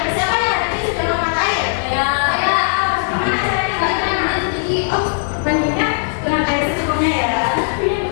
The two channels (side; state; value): right; silent; digital silence